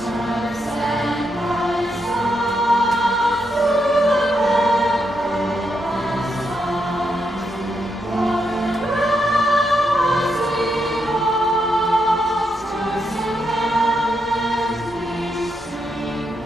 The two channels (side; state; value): both; normal; correlation 0.81